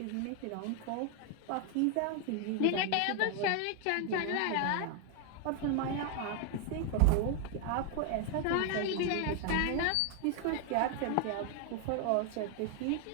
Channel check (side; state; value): both; different; correlation 0.00